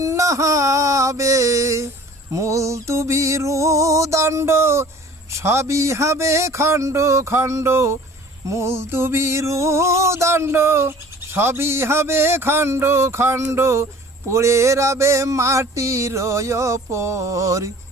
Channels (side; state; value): both; normal; correlation 0.47